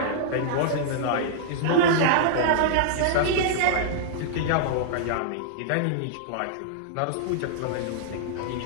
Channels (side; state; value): both; different; correlation -0.01